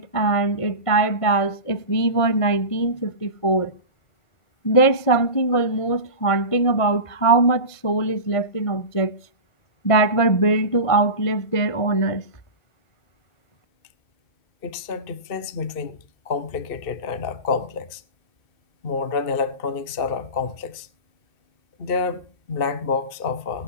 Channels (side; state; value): right; late; 2.6 ms